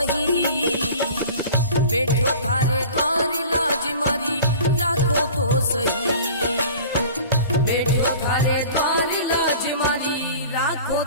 बैठो थारे द्वार लाज मारी राखो तो सही, बैठो थारे द्वार लाज मारी राखो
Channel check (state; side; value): inverted; both; correlation -0.43